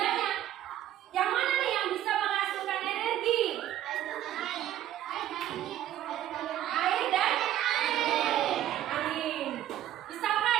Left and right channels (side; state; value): left; quieter; 12.4 dB